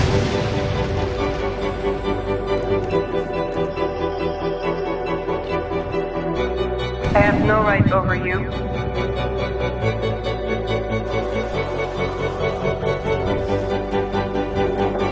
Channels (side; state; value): both; identical; correlation 1.00